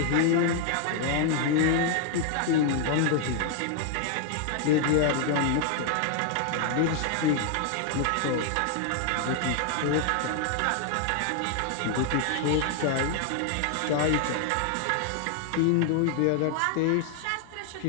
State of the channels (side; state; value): both; different; correlation 0.00